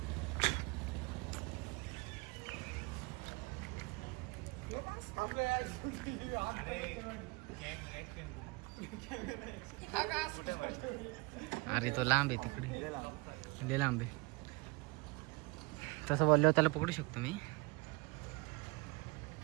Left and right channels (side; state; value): left; quieter; 27.0 dB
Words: अरे तो लांब आहे तिकडे. लय लांब आहे. तसं बोलल्यावर त्याला पकडू शकतो मी.